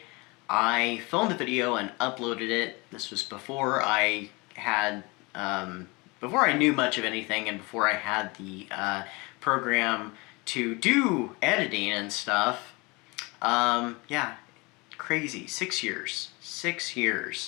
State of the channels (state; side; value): quieter; right; 26.1 dB